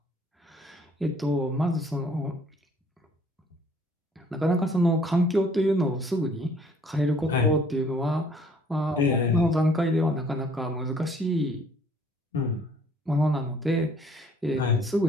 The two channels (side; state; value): both; normal; correlation 0.59